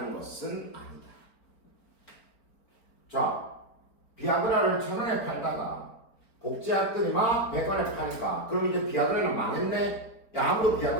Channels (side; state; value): right; late; 4.4 ms